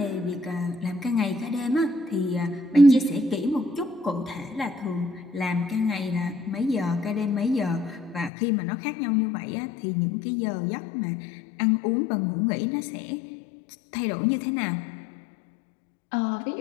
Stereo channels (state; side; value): drops out; right; at 8.3 s